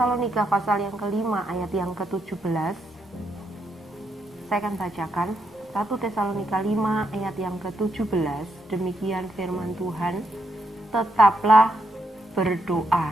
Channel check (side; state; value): both; normal; correlation 0.79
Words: pasal yang kelima ayat yang ke-17, saya akan bacakan. 1 Tesalonika 5 ayat yang ke-17, demikian firman Tuhan, tetaplah